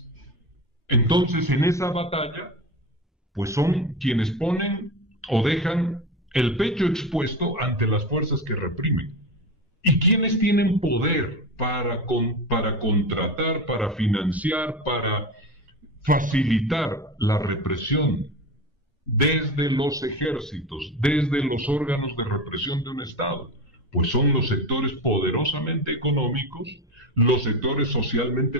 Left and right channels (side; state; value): both; normal; correlation 0.24